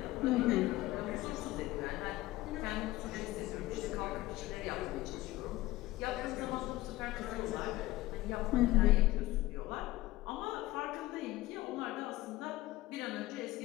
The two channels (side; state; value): right; quieter; 17.5 dB